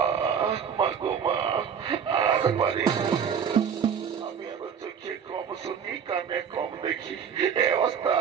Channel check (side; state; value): left; quieter; 7.3 dB